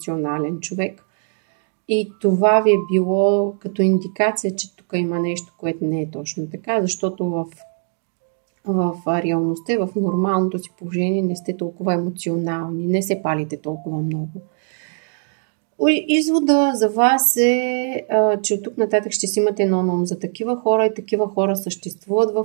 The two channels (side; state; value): left; silent; 65 dB below the other